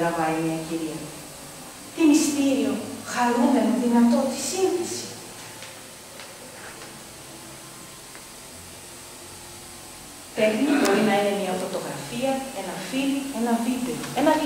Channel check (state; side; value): identical; both; correlation 1.00